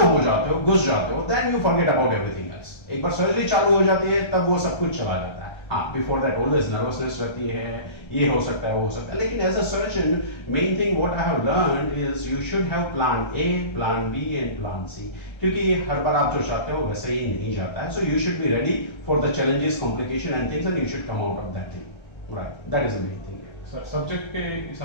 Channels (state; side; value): late; right; 1.3 ms